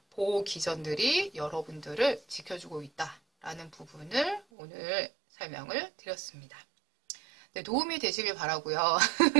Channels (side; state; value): left; drops out; at 4.4 s